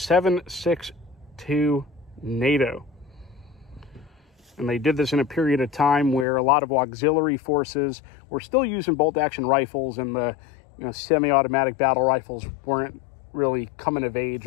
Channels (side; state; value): right; drops out; at 6.2 s